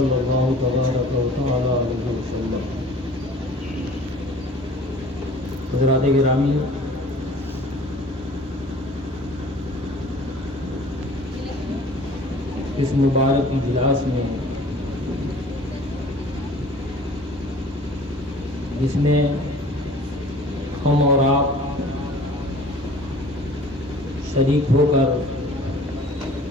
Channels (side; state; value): both; normal; correlation 0.48